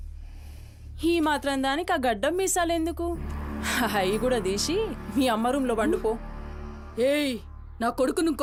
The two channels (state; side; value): identical; both; correlation 1.00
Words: ఈ మాత్రం దానికి ఆ గడ్డం మీసాలెందుకు? అవి కూడా తీసి మీ అమ్మ రూంలో వండుకో. ఏయ్, నా కొడుకు